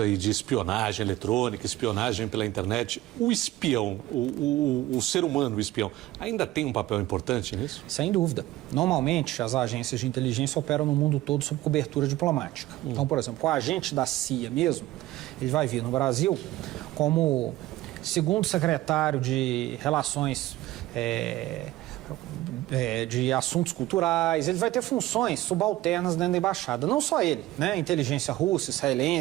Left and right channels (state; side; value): quieter; left; 16.2 dB